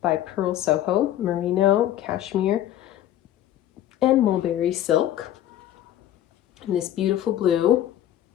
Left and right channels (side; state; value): right; quieter; 12.2 dB